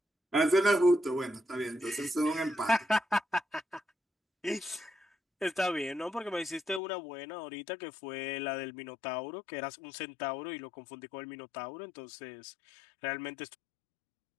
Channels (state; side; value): drops out; right; at 6.8 s